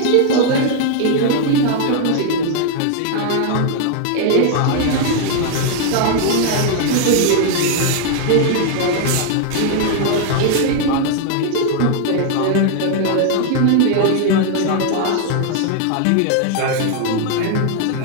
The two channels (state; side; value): different; both; correlation 0.00